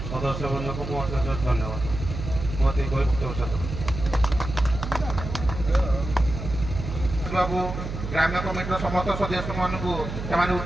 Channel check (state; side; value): noise; right; hum, 7 dB below the sound